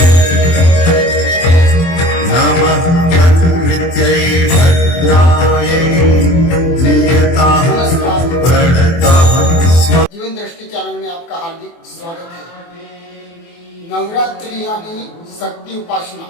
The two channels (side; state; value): right; late; 24 ms